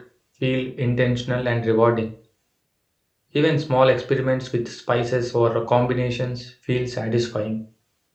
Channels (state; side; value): identical; both; correlation 1.00